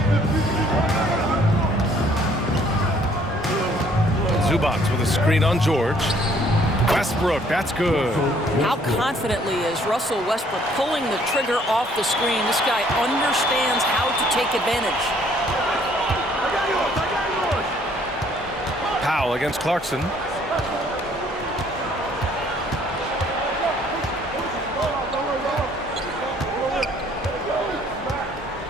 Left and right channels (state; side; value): normal; both; correlation 0.62